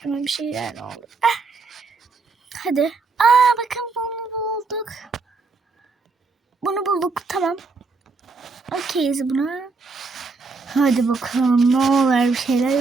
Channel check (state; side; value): quieter; left; 4.2 dB